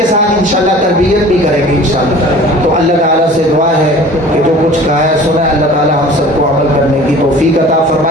ساتھ انشاءاللہ تربیت بھی کریں گے انشاءاللہ۔ تو اللہ تعالیٰ سے دعا ہے کہ جو کچھ کہا ہے سنا ہے، اللہ تعالیٰ ہم سب کو عمل کرنے کی توفیق عطا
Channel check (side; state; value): both; normal; correlation 0.45